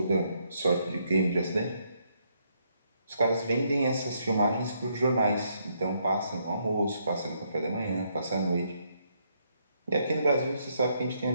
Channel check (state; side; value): inverted; both; correlation -0.74